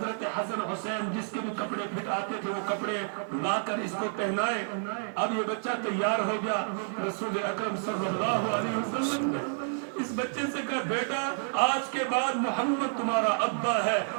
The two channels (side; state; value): left; silent; 58 dB below the other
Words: حسن حسین جس کے بھی کپڑے پھٹ آتے تھے وہ کپڑے لا کر اس کو پہنائے۔ اب یہ بچہ تیار ہو گیا، رسول اکرم صلی اللہ علیہ وسلم نے اس بچے سے کہا بیٹا آج کے بعد محمد تمہارا ابا ہے